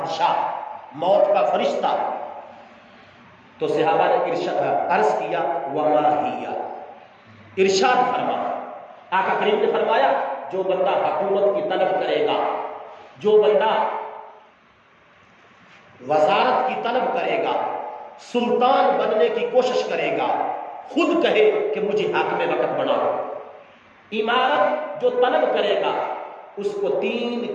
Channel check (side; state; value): both; identical; correlation 1.00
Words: موت کا فرشتہ۔ تو صحابہ نے عرض کیا وما ہی، ارشاد فرما، آقا کریم نے فرمایا جو بندہ حکومت کی طلب کرے گا، جو بندہ وزارت کی طلب کرے گا، سلطان بننے کی کوشش کرے گا، خود کہے کہ مجھے حاکم وقت بناؤ، عمارت جو طلب کرے گا اس کو 3